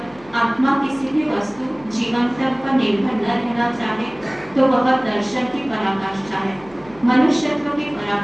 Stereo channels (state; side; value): noise; left; hum, 25 dB below the sound